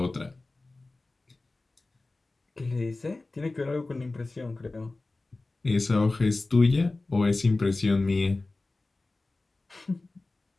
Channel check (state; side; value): quieter; right; 3.2 dB